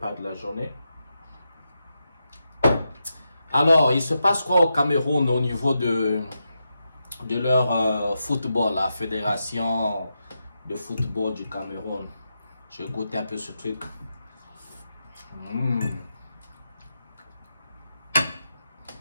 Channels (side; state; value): both; inverted; correlation -0.86